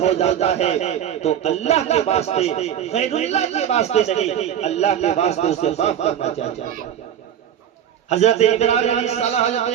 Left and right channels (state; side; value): quieter; left; 9.8 dB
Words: जाता है, तो अल्लाह के वास्ते, गैरुल्लाह के वास्ते नहीं, अल्लाह के वास्ते उसे माफ करना चाहिए। हजरत इब्राहीम अलैहिस्सलाम,